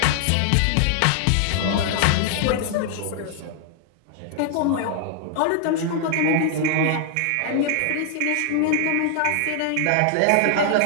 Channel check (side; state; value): both; different; correlation 0.00